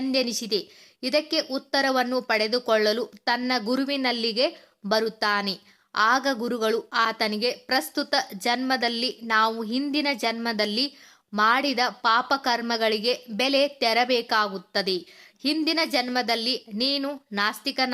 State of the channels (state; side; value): identical; both; correlation 1.00